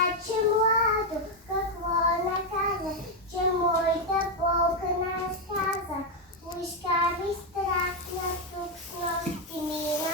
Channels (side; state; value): both; normal; correlation 0.03